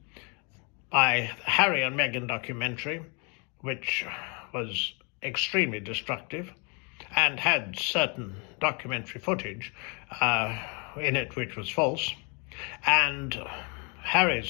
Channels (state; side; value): quieter; right; 33.8 dB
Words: by the Harry and Meghan documentary, which was extremely destructive and had certain documentary footage in it which was false, and